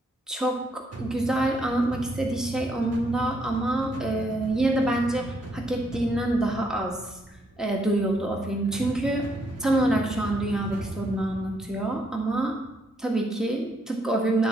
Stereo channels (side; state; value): both; normal; correlation 0.73